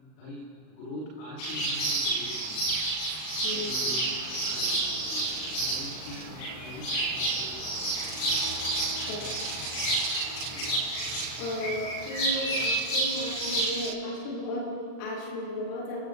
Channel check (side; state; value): right; late; 39 ms